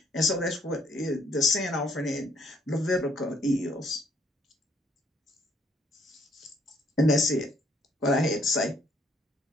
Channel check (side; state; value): both; normal; correlation 0.67